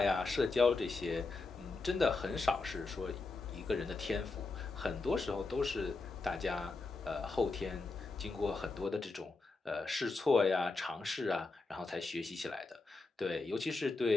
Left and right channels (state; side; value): quieter; right; 3.7 dB